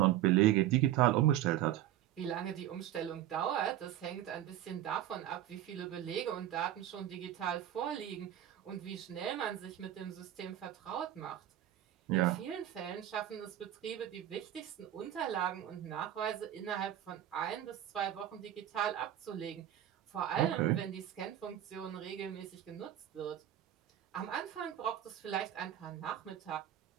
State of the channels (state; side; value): quieter; left; 12.0 dB